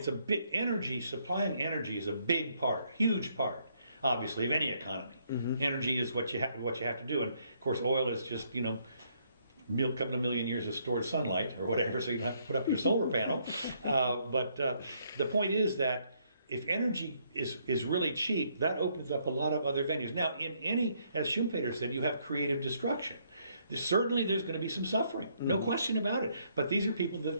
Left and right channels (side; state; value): both; inverted; correlation -0.71